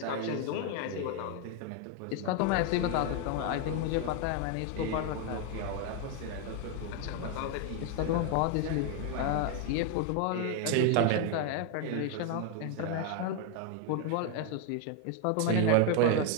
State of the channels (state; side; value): different; both; correlation 0.01